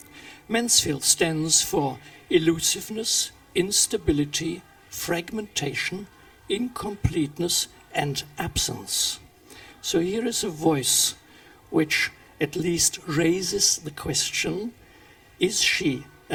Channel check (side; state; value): both; identical; correlation 1.00